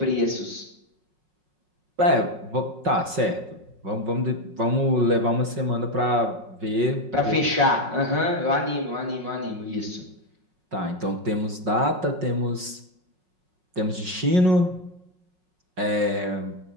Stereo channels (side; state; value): left; late; 5.4 ms